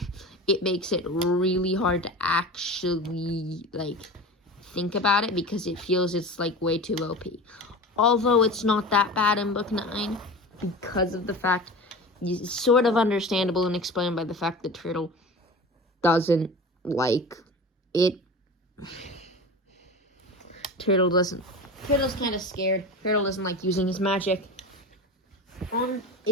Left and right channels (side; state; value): both; normal; correlation 0.32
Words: it makes it really hard to actually, think about it because it feels it's, way too OP. Although it's not that bad in book 9 because of the fact, it's sort of understandable and explained by the fact that Turtle doesn't like it. Turtle's kind of scared. Turtle doesn't like using his magic.